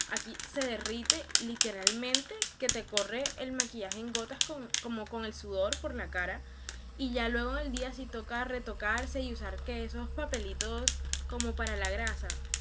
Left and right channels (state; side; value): identical; both; correlation 1.00